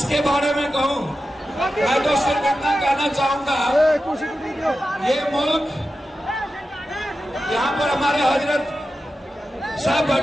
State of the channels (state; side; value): normal; both; correlation 0.92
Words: बारे में कहूं? मैं तो सिर्फ इतना कहना चाहूंगा, ये मुल्क, यहाँ पर हमारे हजरत साहब